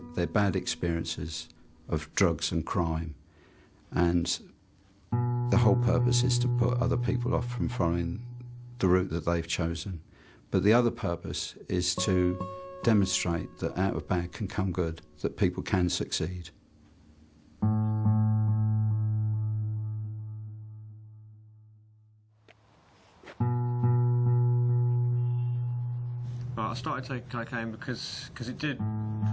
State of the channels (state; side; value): identical; both; correlation 1.00